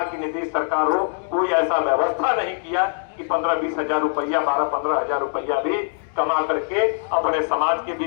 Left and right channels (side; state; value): right; silent; digital silence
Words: की नीतीश सरकार हो, कोई ऐसा व्यवस्था नहीं किया कि 15-20 हजार रुपया, 12-15 हजार रुपया भी कमा करके अपने समाज के